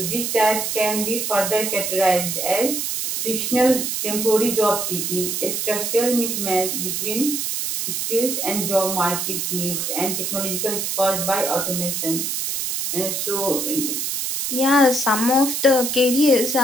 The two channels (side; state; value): right; noise; hiss, 2 dB below the sound